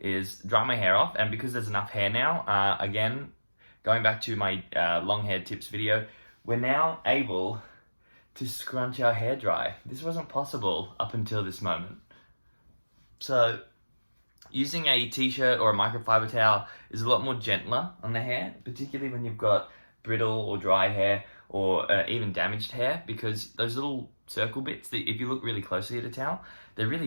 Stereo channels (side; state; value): both; inverted; correlation -1.00